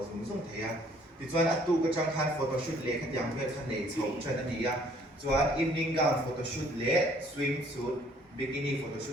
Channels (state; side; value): normal; both; correlation 0.60